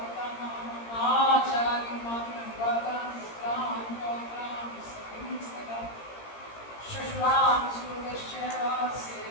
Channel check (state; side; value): late; right; 17 ms